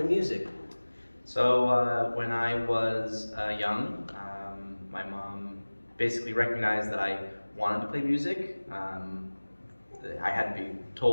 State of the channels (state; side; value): inverted; both; correlation -1.00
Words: music? So when I was young, my mom basically recognized that I wanted to play music. I had to be